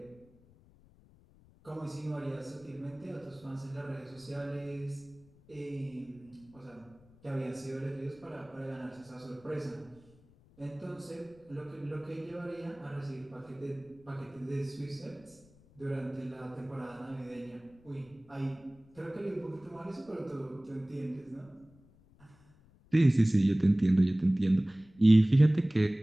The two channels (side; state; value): left; noise; rumble, 28 dB below the sound